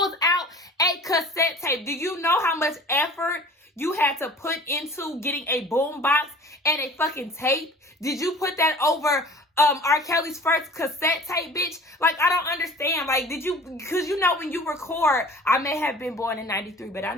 out a cassette tape? Do you know how much effort you had to put into getting a boom box and a fucking tape? Did you put that over R. Kelly's first cassette tape, bitch? Like, I don't understand. Like, did you, because you know when you record, I may have been born in 93, but I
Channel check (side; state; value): both; normal; correlation 0.44